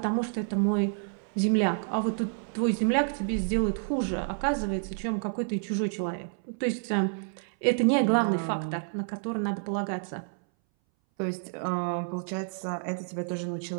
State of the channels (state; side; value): silent; left; 59 dB below the other